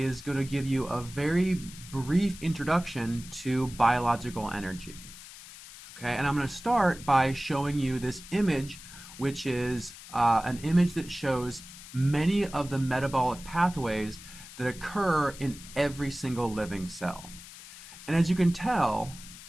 going to give you a very brief introduction to biological energy. Okay, and I'm going to start by showing you this image, which is an image that shows many of the metabolic pathways that occur in every single living cell. And as you can tell,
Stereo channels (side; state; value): left; noise; hiss, 16 dB below the sound